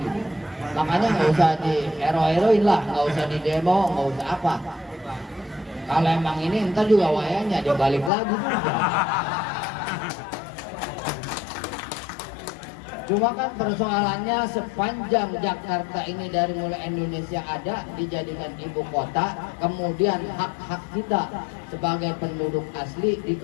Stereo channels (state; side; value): drops out; right; at 8.1 s